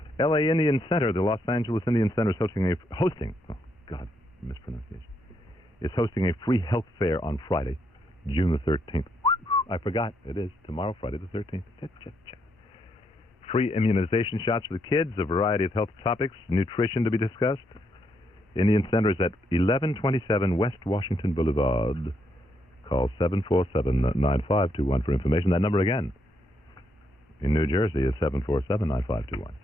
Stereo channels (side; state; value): both; normal; correlation 0.77